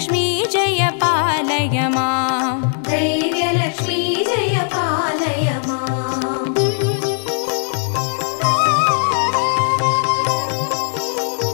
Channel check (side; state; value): right; silent; 67 dB below the other